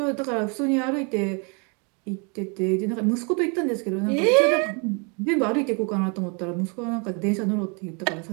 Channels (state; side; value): quieter; left; 34.7 dB